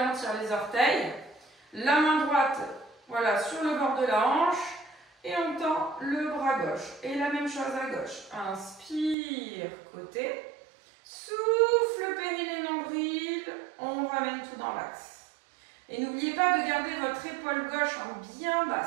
tire les orteils. La main droite, voilà, sur le bord de la hanche. Et on tend le bras gauche. Et la même chose à gauche. Inspire, côté. Souffle, périnée, nombril. On ramène tout dans l'axe. Et n'oubliez pas de garder votre épaule gauche en bien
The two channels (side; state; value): left; drops out; at 9.2 s